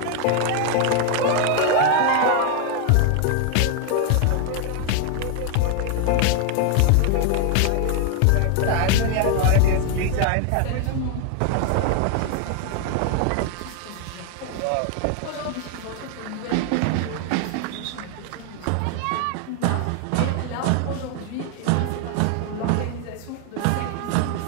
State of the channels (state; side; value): different; both; correlation 0.01